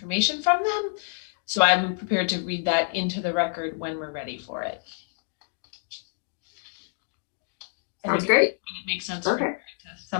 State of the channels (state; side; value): silent; right; digital silence